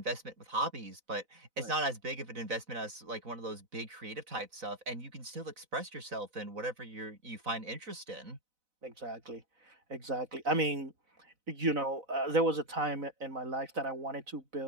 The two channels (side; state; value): left; late; 4.0 ms